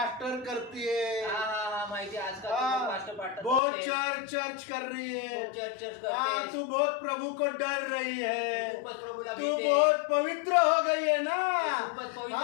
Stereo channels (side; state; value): right; drops out; at 3.6 s